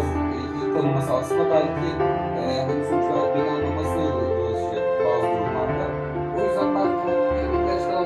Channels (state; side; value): identical; both; correlation 1.00